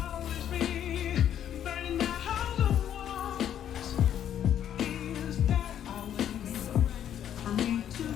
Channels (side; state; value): right; quieter; 10.1 dB